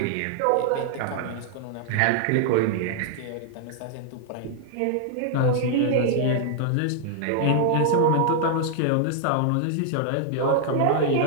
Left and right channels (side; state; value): both; different; correlation -0.01